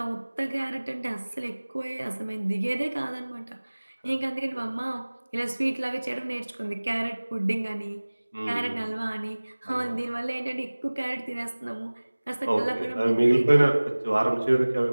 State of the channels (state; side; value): inverted; both; correlation -1.00